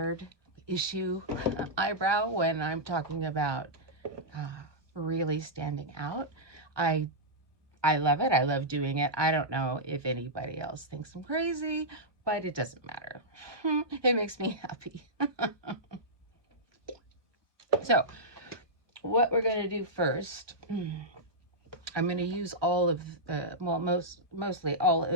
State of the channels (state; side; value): late; left; 1.2 ms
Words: issue eyebrow when I'm talking about really standing out. I love it. I love doing it. I don't know if anybody else thinks I'm crazy, but it doesn't matter. It makes me happy. So what we're going to do first, I'm going to use all of the, well, mostly all